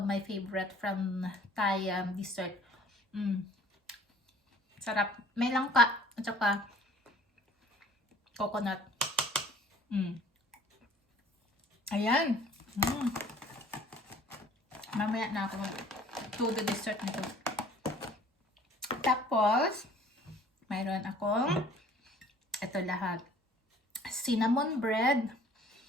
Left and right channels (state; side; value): normal; both; correlation 0.53